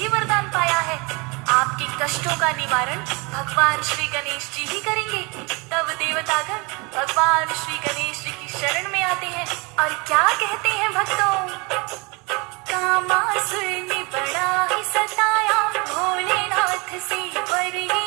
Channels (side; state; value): left; quieter; 28.5 dB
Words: वरदान पाया है, आपके कष्टों का निवारण भगवान श्री गणेश जी ही करेंगे। तब देवतागण भगवान श्री गणेश जी की शरण में आते हैं और क्या कहते हैं भक्तों, कामासुर ने बड़ा ही सताया, भोलेनाथ से वर